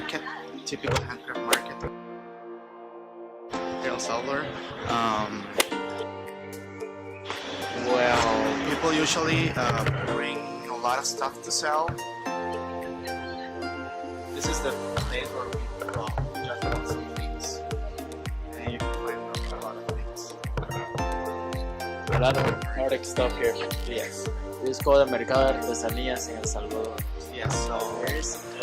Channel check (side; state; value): both; identical; correlation 1.00